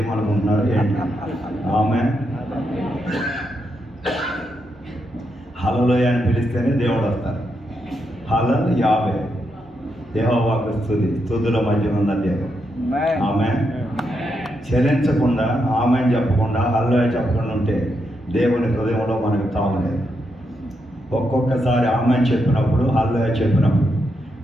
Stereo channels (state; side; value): normal; both; correlation 0.82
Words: ఏంటి? ఆమె హల్లెలూయా అని పిలిస్తేనే దేవుడు వస్తారు. హల్లెలూయా యావే యెహోవాకు స్తుతి, స్తుతుల మధ్య ఉన్న దేవుడు. ఆమె చలించకుండా, ఆమె చెప్పకుండా, హల్లెలూయా చెప్పకుండా ఉంటే దేవుని హృదయంలో మనకు తావలేదు. ఒక్కొక్కసారి ఆమె చెప్పినప్పుడు, హల్లెలూయా చెప్పినప్పుడు